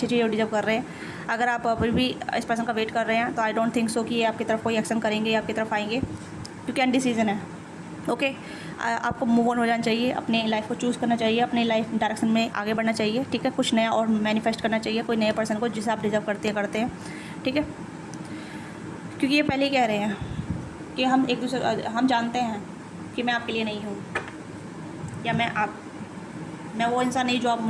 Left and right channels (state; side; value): identical; both; correlation 1.00